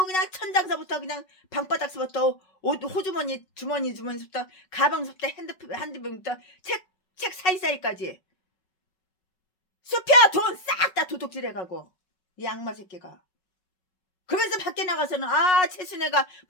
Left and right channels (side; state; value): right; late; 5.4 ms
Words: 그냥 천장서부터 그냥 방바닥서부터 옷 호주머니 주머니서부터 가방서부터 핸드폰부터 책 사이사이까지 숲혀 돈 싹 다 도둑질해가고 이 악마 새끼가. 그래서 밖에 나가서는 최순애가